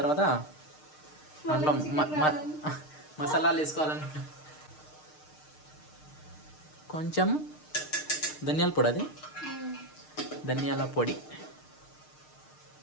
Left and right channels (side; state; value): right; late; 6.6 ms